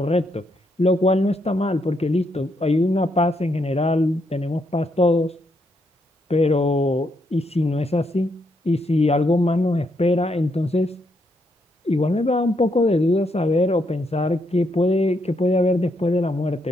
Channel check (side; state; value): both; normal; correlation 0.77